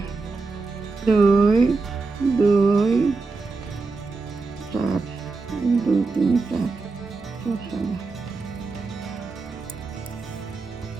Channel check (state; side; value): quieter; left; 4.0 dB